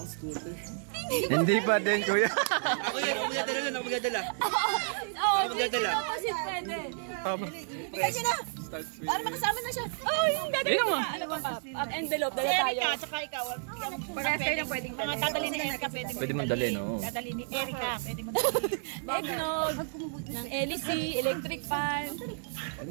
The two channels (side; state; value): left; silent; digital silence